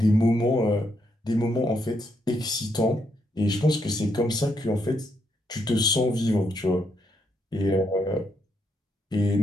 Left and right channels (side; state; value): both; normal; correlation 0.77